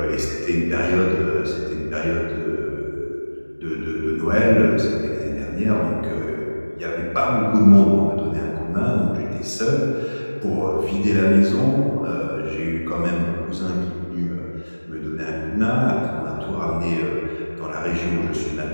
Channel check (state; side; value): inverted; both; correlation -1.00